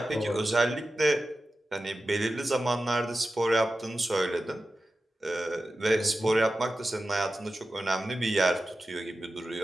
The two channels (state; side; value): normal; both; correlation 0.93